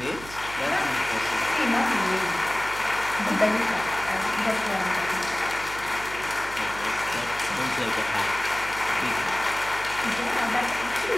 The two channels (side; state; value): right; noise; hum, 15 dB below the sound